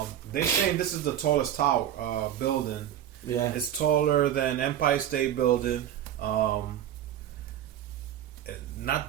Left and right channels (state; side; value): quieter; left; 10.6 dB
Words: They saying this is the tallest tower building. Yeah. It's taller than Empire State Building.